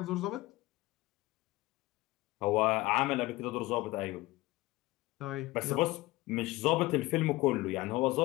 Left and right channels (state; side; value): quieter; right; 19.7 dB